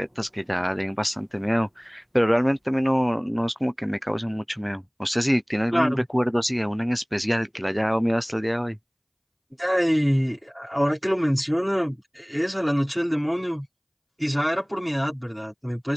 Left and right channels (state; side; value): identical; both; correlation 1.00